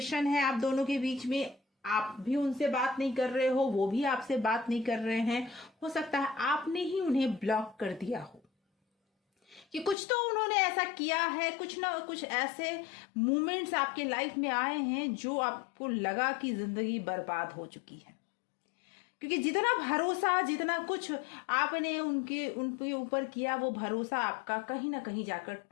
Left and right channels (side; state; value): right; drops out; at 10.0 s